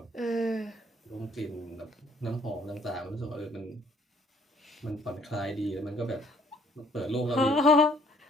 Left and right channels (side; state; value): both; normal; correlation 0.62